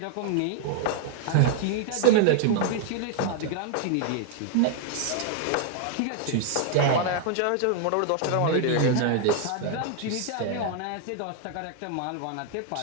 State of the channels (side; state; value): both; different; correlation 0.00